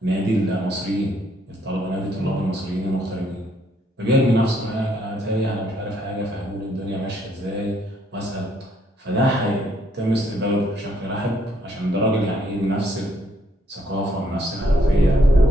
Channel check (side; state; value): both; normal; correlation 0.70